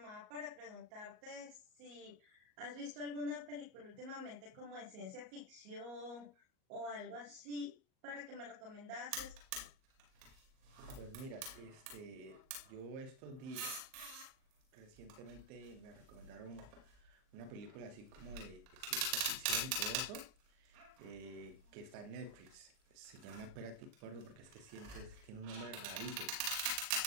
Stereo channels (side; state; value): left; late; 38 ms